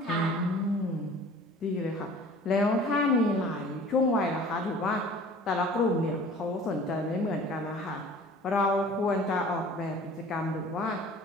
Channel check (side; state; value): both; normal; correlation 0.46